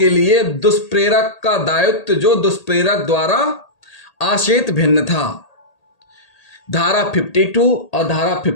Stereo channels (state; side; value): late; right; 1.8 ms